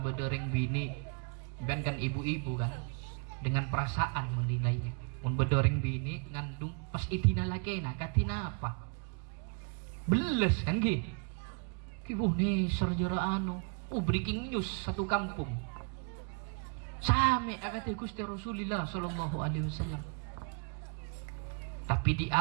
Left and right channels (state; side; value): quieter; left; 37.8 dB